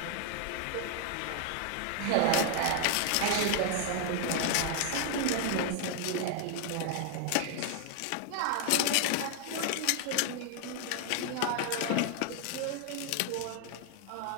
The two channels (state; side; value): different; both; correlation 0.00